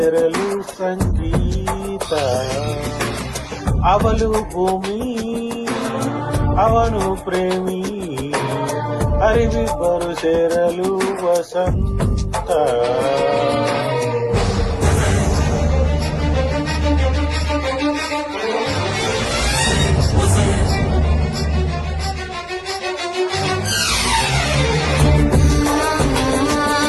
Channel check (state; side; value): identical; both; correlation 1.00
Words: ಸಂಗೀತ. ಅವಳು ಭೂಮಿ, ಅವನು ಪ್ರೇಮಿ, ಅರಿವಿಬ್ಬರು ಸೇರಲು ವಸಂತ.